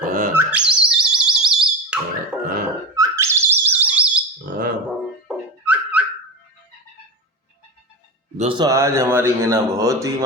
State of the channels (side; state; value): both; normal; correlation 0.20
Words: हाँ हाँ हाँ हाँ। दोस्तों आज हमारी मीना बहुत ही